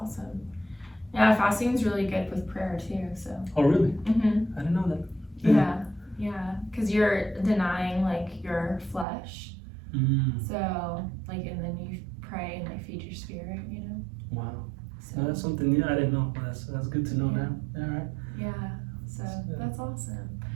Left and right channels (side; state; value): left; drops out; at 9.1 s